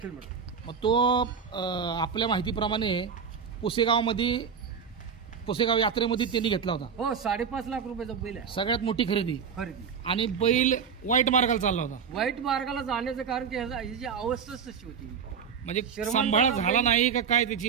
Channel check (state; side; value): quieter; left; 6.7 dB